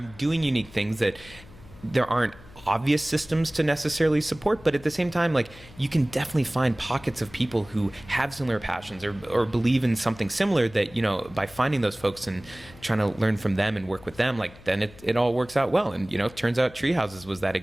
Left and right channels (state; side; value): noise; left; hum, 21 dB below the sound